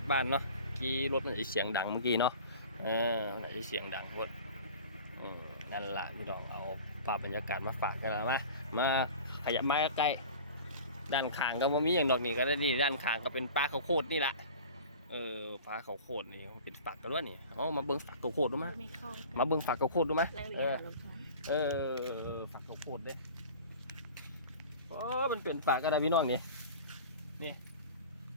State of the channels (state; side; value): inverted; both; correlation -0.40